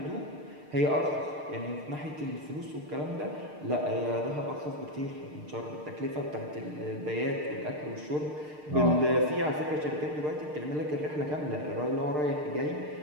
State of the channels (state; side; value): late; left; 6.6 ms